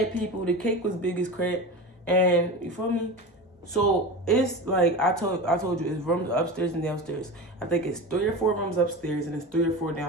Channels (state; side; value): normal; both; correlation 0.28